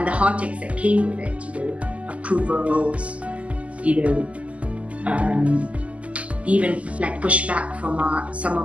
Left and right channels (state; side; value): late; left; 0.065 ms